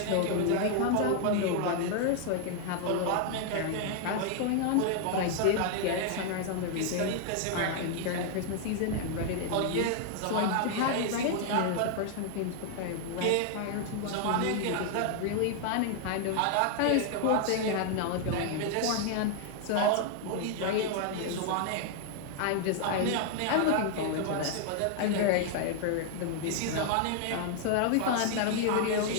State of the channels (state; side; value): different; both; correlation 0.00